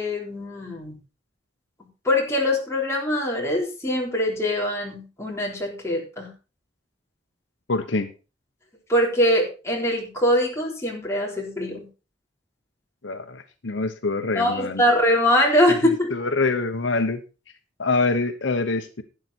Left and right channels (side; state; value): both; normal; correlation 0.20